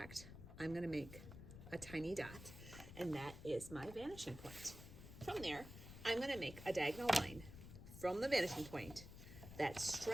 I'm gonna make a tiny dot, and that is my vanishing point. From there, I'm gonna make a diagonal line from the vanishing point that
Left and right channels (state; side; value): noise; left; rumble, 13 dB below the sound